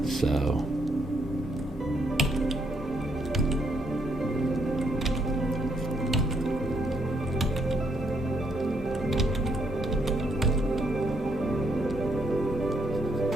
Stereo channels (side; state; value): both; normal; correlation 0.74